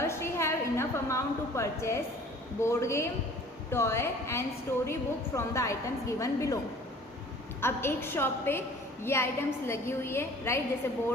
she have enough amount to purchase board game, toy and story book from the items given below? अब एक शॉप पे ये आइटम्स लगी हुई है, राइट. जैसे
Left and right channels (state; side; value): normal; both; correlation 0.49